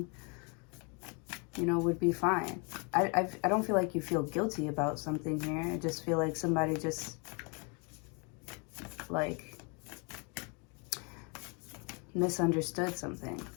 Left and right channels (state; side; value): quieter; right; 34.2 dB